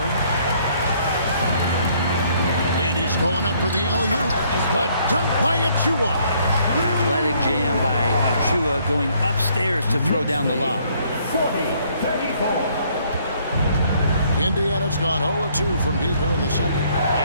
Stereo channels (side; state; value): both; inverted; correlation -0.65